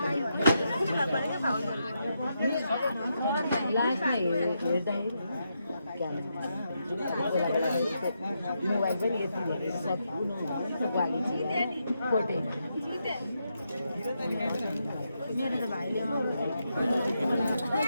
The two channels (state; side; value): inverted; both; correlation -0.83